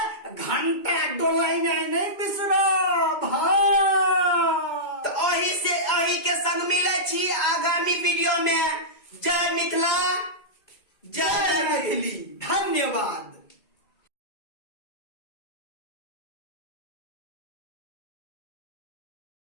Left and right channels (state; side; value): late; right; 2.2 ms